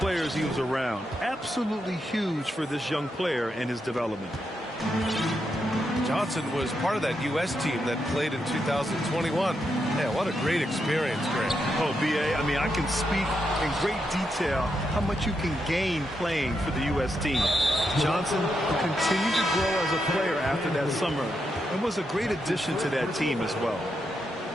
he was around, absolutely huge for this young player and his development. Johnson was part of that U.S. team that played in 2021. Man, what a great experience, Grant. Oh, B.A., I mean, I can speak in great detail how much you can gain playing for the U.S. team. Johnson continued to grow as a player after that summer and was a great addition to that team as well.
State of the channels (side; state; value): both; normal; correlation 0.83